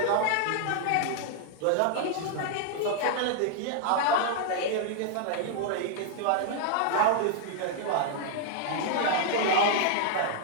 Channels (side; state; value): both; different; correlation 0.00